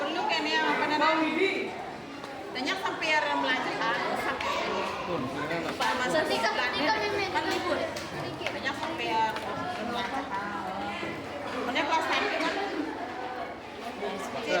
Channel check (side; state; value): both; identical; correlation 1.00